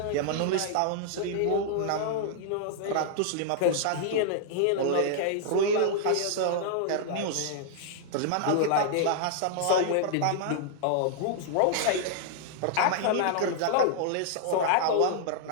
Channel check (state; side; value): different; both; correlation -0.01